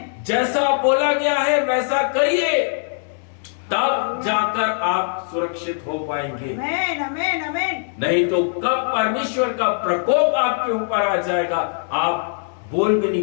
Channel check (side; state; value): right; silent; digital silence